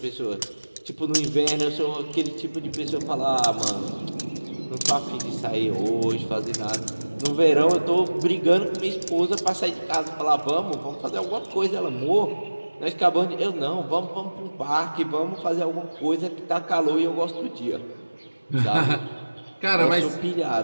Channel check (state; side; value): inverted; both; correlation -1.00